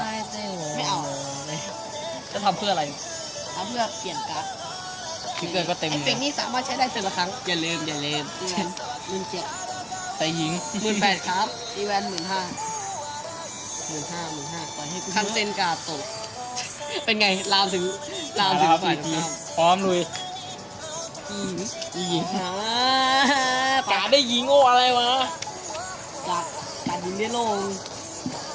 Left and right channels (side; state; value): both; identical; correlation 1.00